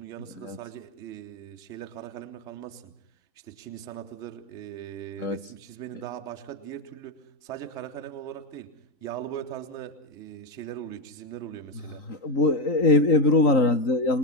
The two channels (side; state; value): right; late; 3.9 ms